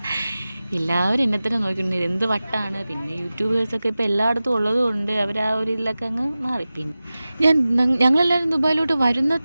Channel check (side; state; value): both; inverted; correlation -0.96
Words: എല്ലാവരും എന്നെ തന്നെ നോക്കിയിട്ടുണ്ട്, എന്ത് വട്ടാണ്. പിന്നെ യൂട്യൂബേഴ്സൊക്കെ ഇപ്പോൾ എല്ലായിടത്തും ഉള്ളതുകൊണ്ട് അവർ ആ ഒരു ഇതിലൊക്കെ അങ്ങ് മാറി. പിന്നെ ഞങ്ങളെല്ലാവരും ദുബായിലോട്ട് വരുന്ന